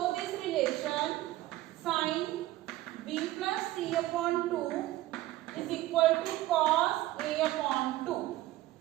this relation. Sin B plus C upon 2 is equal to cos A upon 2.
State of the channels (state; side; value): quieter; left; 16.0 dB